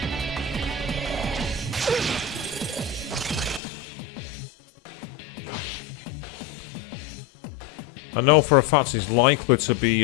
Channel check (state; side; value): drops out; right; at 3.6 s